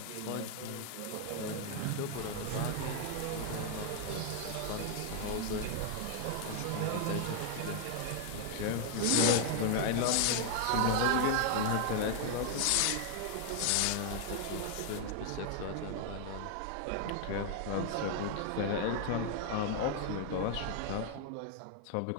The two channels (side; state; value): both; different; correlation 0.00